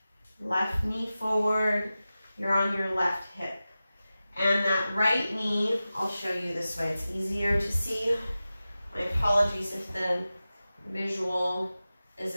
Left knee forward, you're on your left hip. And that right knee, I'll show you this way, it's easier to see. My apologies if the visual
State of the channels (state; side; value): inverted; both; correlation -0.95